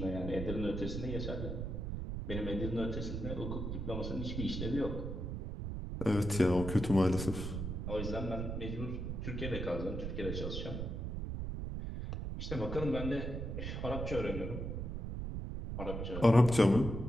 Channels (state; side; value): noise; right; rumble, 4 dB below the sound